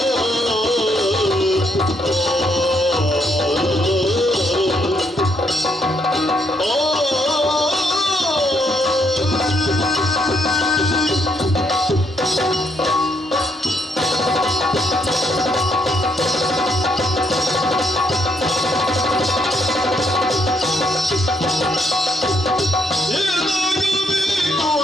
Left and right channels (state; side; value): normal; both; correlation 0.73